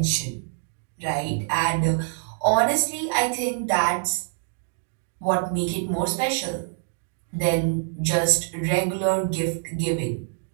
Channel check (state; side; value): silent; left; digital silence